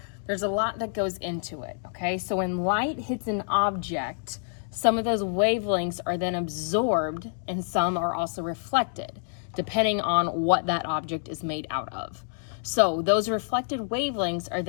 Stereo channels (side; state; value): right; silent; digital silence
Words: there's a lot that goes into it, okay? So when light hits an object, some of those wavelengths are then absorbed and some are also reflected, depending on what that object is made out of. So those reflected wavelengths are